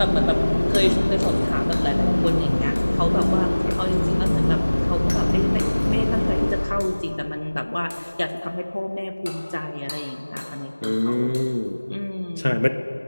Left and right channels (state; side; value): inverted; both; correlation -1.00